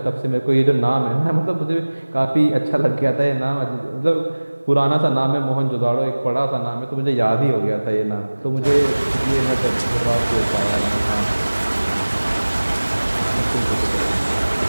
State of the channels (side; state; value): both; inverted; correlation -1.00